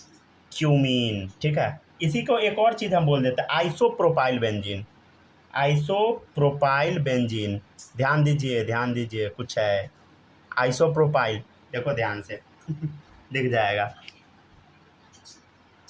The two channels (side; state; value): both; identical; correlation 1.00